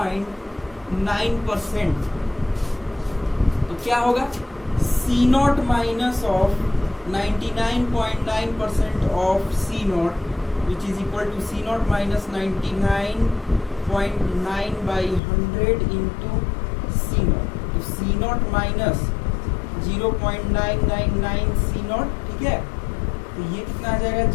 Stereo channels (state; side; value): drops out; right; at 15.2 s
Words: तो क्या होगा, C0 minus of 99.9% of C0 which is equal to C0 minus 99.9 by 100 into C0। तो C0 माइनस 0.999 C0, ठीक है। तो ये कितना आ जाएगा